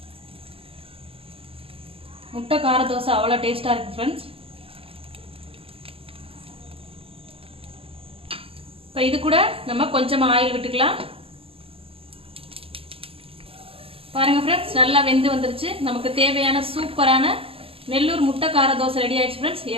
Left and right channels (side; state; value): left; late; 0.27 ms